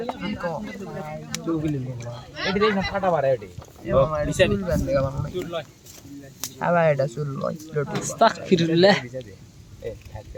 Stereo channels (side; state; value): both; identical; correlation 1.00